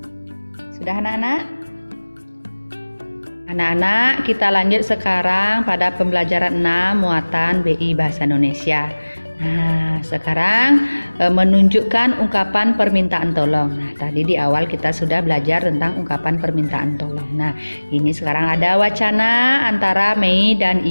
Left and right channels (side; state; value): both; inverted; correlation -1.00